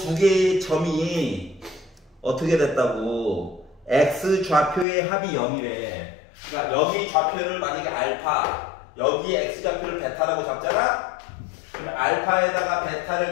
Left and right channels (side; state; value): right; drops out; at 4.9 s